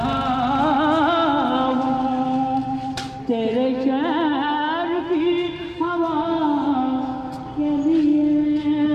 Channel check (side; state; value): both; identical; correlation 1.00